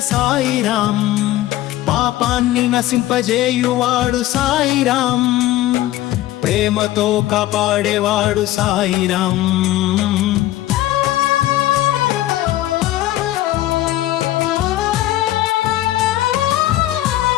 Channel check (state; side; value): quieter; right; 15.3 dB